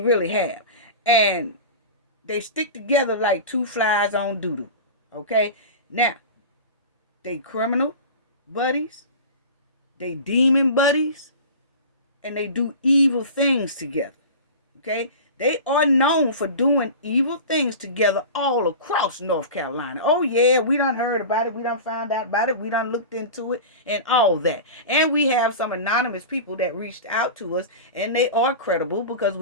have. And They stick together like two flies on doodle. Okay? Now, they criminal buddies, they demon buddies, and they do evil things together. Okay? They are known for doing evil things together all across North Carolina. Oh, yeah, we done heard about it. We done found out about it. We done looked into it and all that. And we have some anonymous people that reached out to us, and they are credible because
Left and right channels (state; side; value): inverted; both; correlation -0.32